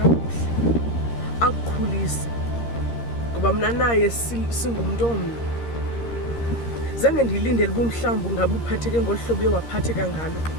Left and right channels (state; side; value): late; right; 13 ms